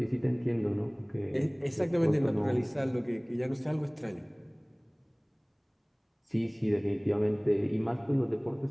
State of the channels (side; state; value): both; identical; correlation 1.00